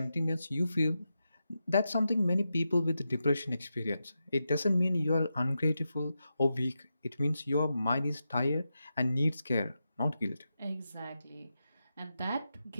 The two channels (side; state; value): both; inverted; correlation -0.89